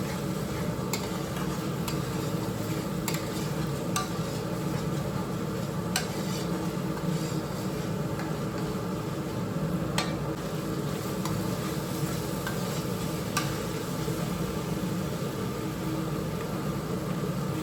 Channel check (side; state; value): both; identical; correlation 1.00